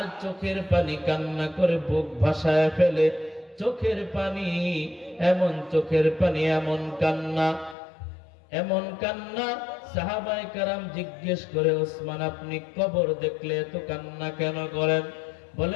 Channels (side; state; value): right; drops out; at 7.8 s